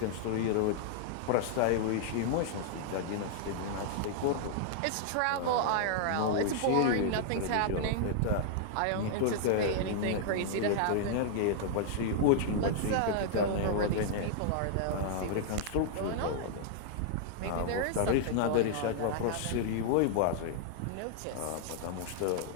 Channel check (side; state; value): both; different; correlation -0.01